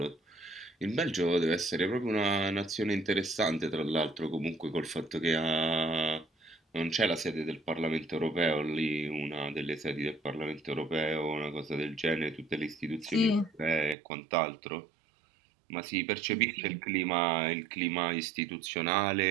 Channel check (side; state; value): left; drops out; at 14.0 s